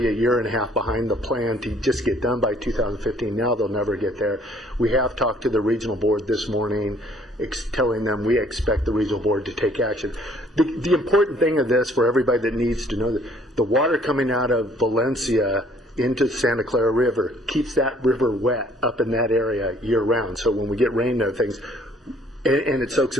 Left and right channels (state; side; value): normal; both; correlation 0.60